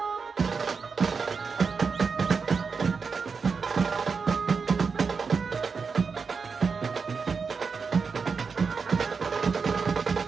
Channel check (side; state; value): left; quieter; 5.2 dB